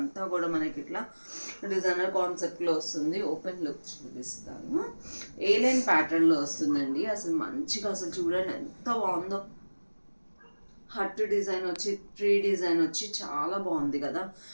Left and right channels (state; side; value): inverted; both; correlation -1.00